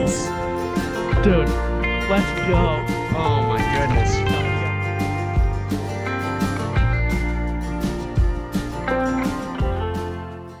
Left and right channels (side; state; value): both; identical; correlation 1.00